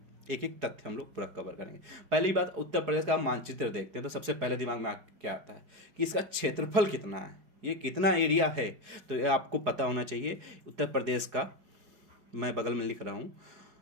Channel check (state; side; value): late; left; 4.8 ms